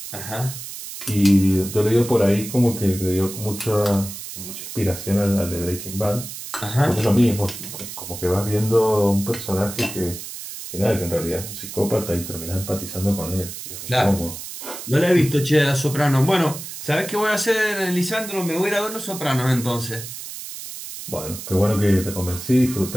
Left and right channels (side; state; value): right; noise; hiss, 10 dB below the sound